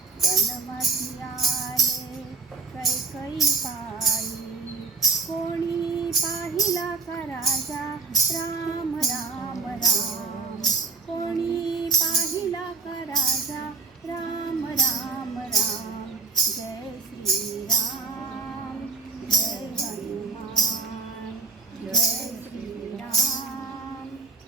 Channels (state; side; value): quieter; left; 4.5 dB